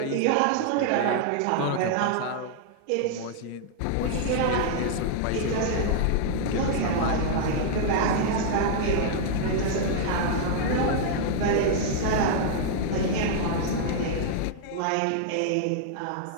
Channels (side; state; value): both; different; correlation -0.01